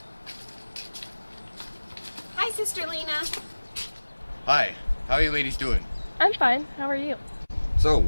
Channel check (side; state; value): both; inverted; correlation -1.00